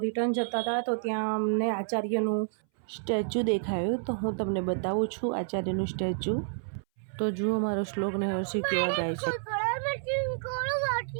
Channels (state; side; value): silent; left; 58 dB below the other